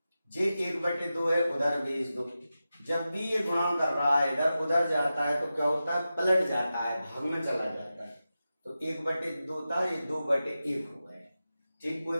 जे 1/2 है उधर भेज दो। जब भी ये गुणा कर रहा है इधर उधर जाता है तो क्या होता है? पलट जाता है, भाग में चला जाता है। तो 1/2 था, ये 2/1 हो गए। ठीक, कोई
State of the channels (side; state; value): both; inverted; correlation -0.93